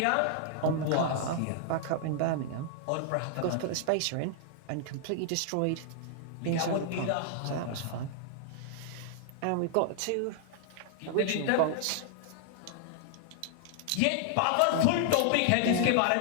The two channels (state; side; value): different; both; correlation 0.00